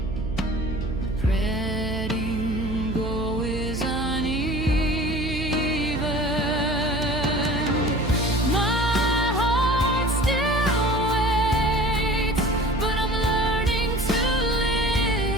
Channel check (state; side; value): noise; right; hum, 5 dB below the sound